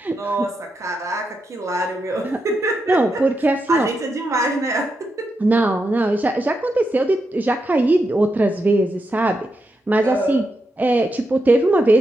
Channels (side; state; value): both; normal; correlation 0.85